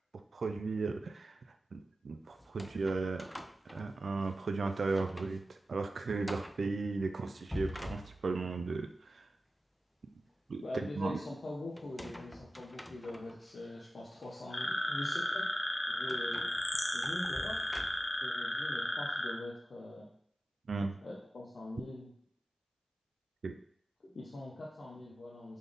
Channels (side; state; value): both; normal; correlation 0.93